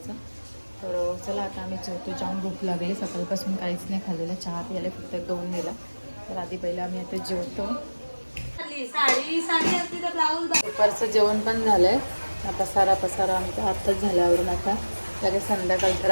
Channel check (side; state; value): both; inverted; correlation -1.00